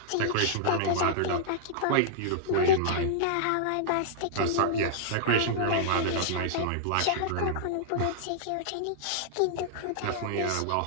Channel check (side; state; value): both; different; correlation -0.02